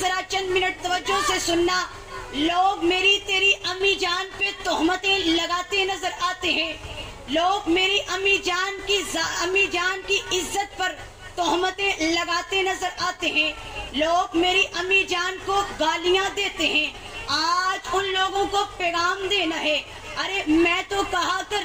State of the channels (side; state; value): both; identical; correlation 1.00